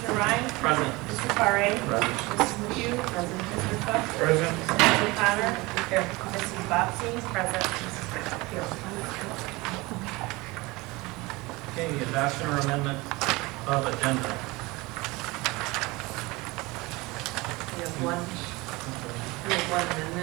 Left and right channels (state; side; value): quieter; left; 22.8 dB